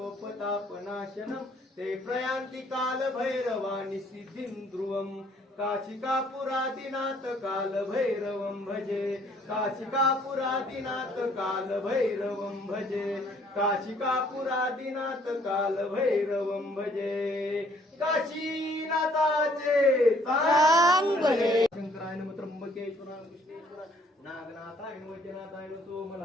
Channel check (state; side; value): normal; both; correlation 0.62